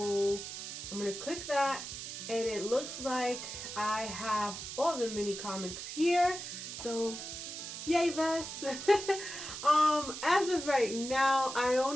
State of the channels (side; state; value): right; noise; hiss, 8 dB below the sound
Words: I'm gonna click that and it looks like I have all the mini comics here. So yay, Vess. As of right now, I